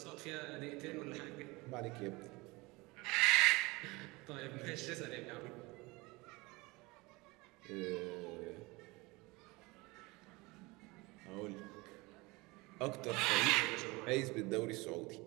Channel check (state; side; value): quieter; left; 23.8 dB